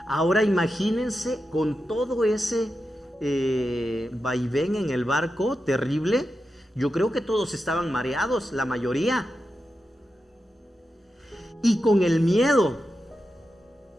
Ahora imagínense con todo ese vaivén en el barco terrible. Yo creo que todos estaban mareados, la mayoría. Y con el miedo.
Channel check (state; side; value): normal; both; correlation 0.89